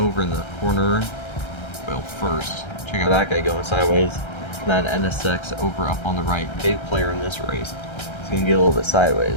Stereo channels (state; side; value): late; right; 1.3 ms